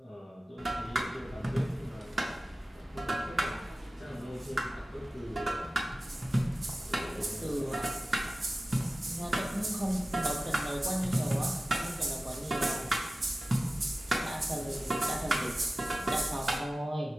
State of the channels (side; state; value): both; normal; correlation 0.96